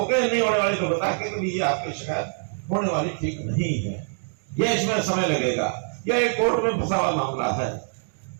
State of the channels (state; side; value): silent; left; digital silence